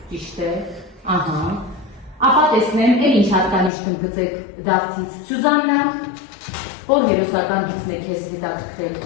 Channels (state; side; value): drops out; right; at 3.7 s